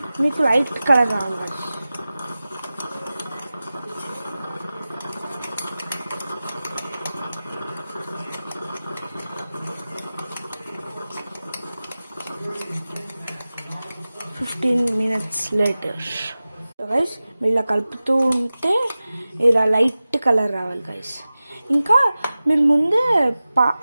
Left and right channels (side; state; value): both; inverted; correlation -0.96